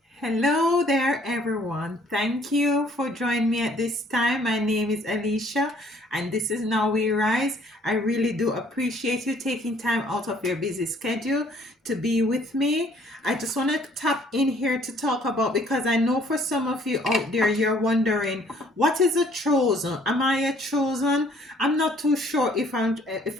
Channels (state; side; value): normal; both; correlation 0.60